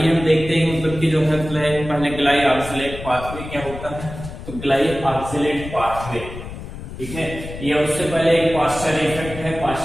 हम देखते हैं कि जो है पहले ग्लाई ऑक्सिलेट पाथवे क्या होता है। तो ग्लाई ऑक्सिलेट पाथवे, ठीक है, ये उससे पहले एक पास्चर इफेक्ट है।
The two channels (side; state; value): left; noise; rumble, 11 dB below the sound